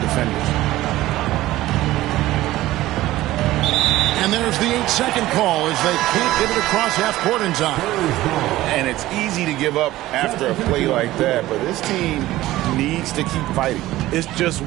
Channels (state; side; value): quieter; left; 16.2 dB